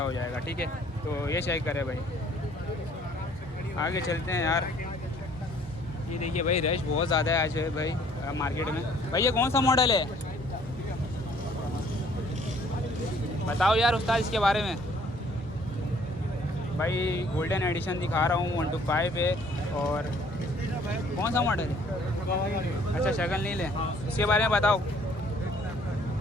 हो जाएगा। ठीक है, तो ये चेक करे भाई। आगे चलते हैं यार। ये देखिए भाई रश बहुत ज़्यादा है आज है भाई मार्केट में। भाई ये कौन सा मॉडल है बताओ यार उस्ताद इसके बारे में। भाई गोल्डन एडिशन दिखा रहा हूँ, 125 है। और कौन सा मॉडल है? अच्छा शक्ल नहीं ले, इसके बारे में बताओ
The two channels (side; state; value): both; normal; correlation 0.59